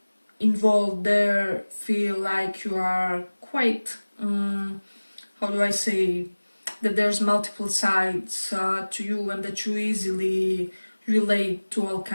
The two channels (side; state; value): both; inverted; correlation -1.00